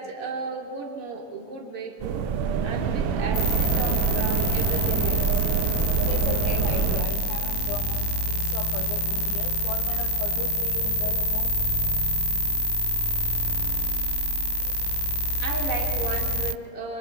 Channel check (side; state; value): right; late; 20 ms